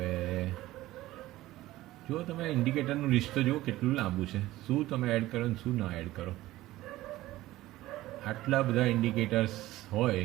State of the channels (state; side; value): quieter; left; 16.5 dB